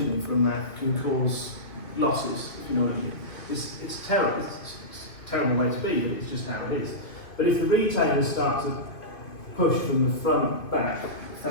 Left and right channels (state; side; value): late; right; 2.5 ms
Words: from that can cause losses, if you know what I mean. It's terrible. It's a terrible way to be, but it's just how it is. But if the retailers start to push from the front back, if